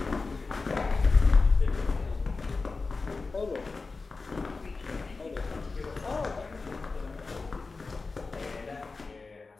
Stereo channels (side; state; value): right; quieter; 4.0 dB